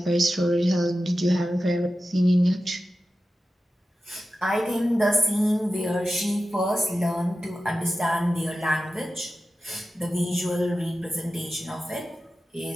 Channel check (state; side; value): normal; both; correlation 0.93